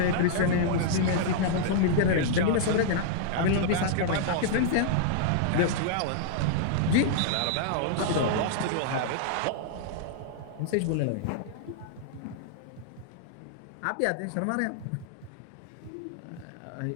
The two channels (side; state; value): both; different; correlation -0.01